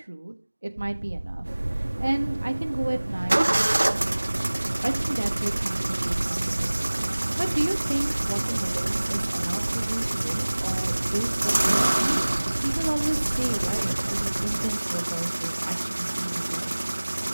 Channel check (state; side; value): inverted; both; correlation -1.00